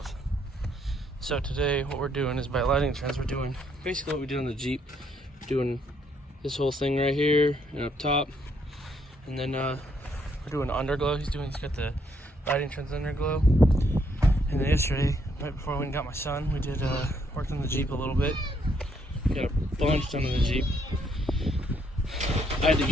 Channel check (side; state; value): both; normal; correlation 0.71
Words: So today what we're doing is by lighting trends, we're doing basically what we did on the Jeep. We're doing this whole thing right here and up top. And then we're doing underglow. He's got the lighting trends underglow. And then yesterday, right before I went and got my son, we did worked on the Jeep a little bit. Got a bunch done on the Jeep. I had to